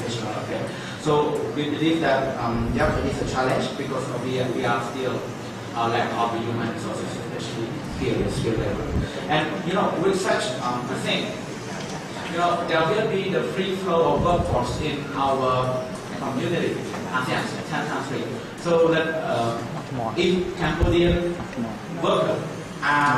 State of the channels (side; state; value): both; identical; correlation 1.00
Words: affair. So we believe that it is a challenge because we are still lack of human resources, especially here in skill level. And with such a thing, there will be the free flow of workforce in our community, ASEAN 10 countries. So that if Cambodian workers